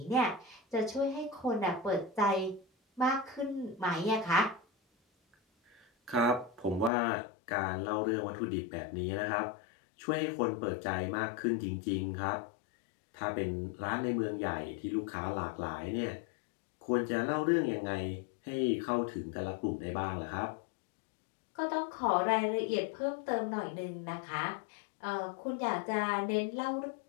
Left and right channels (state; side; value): drops out; right; at 6.9 s